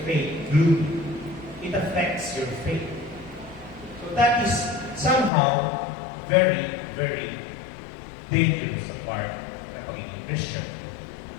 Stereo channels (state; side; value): drops out; right; at 5.3 s